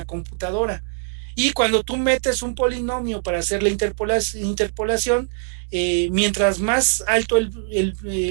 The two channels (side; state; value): left; silent; digital silence